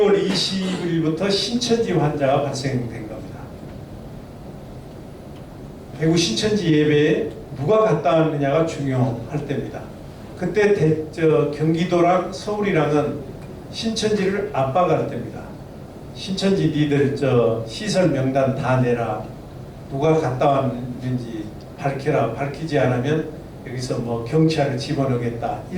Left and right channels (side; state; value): both; identical; correlation 1.00